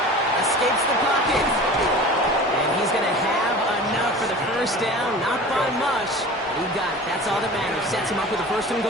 escapes the pocket. And he's going to have enough for the 1st down. Not by much. He got it. That's all that matters. Sets him up with a 1st and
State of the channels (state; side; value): normal; both; correlation 0.38